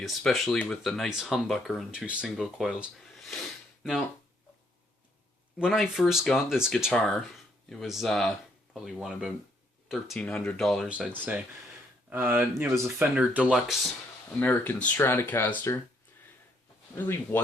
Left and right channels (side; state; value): both; normal; correlation 0.70